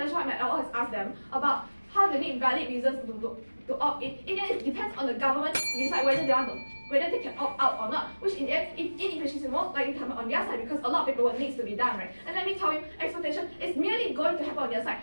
what my LO has asked them about how they need valid reasons to opt in the end it depends on the government to decide whether they can opt out or not, which in the end, inefficiency is more likely to happen on their side because a lot of paperwork needs to be done, right? And let me tell you, exploitation is merely going to happen on their side.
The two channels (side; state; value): both; inverted; correlation -1.00